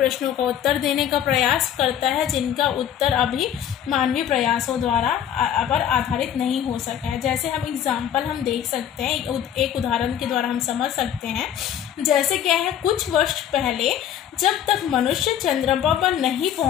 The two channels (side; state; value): right; quieter; 9.9 dB